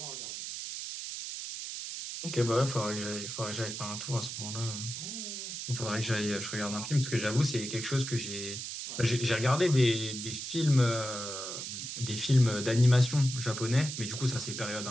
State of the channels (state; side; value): noise; right; hiss, 6 dB below the sound